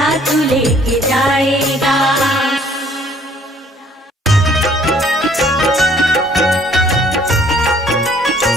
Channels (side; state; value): both; normal; correlation 0.59